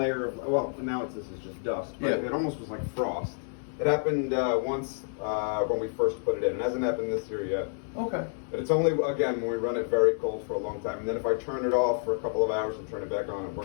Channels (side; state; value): right; silent; 58 dB below the other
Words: of, well, now this is just dust, but Yeah. it almost was like frost. It happened once when we first put it in. It hasn't happened this year yet. Okay. But it's only, again, when we run it very cold for a long time. And then if I turn it off for a couple of hours and turn it back on, it